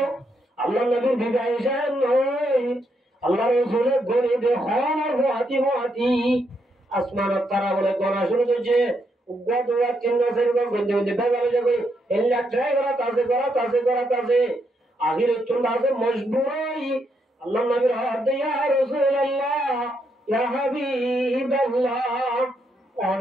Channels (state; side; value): normal; both; correlation 0.78